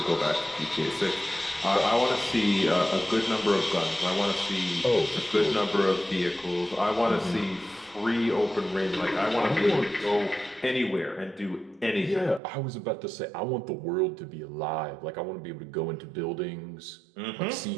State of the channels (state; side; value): drops out; left; at 12.4 s